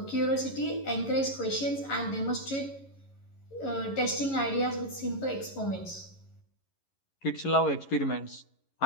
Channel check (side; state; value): right; late; 11 ms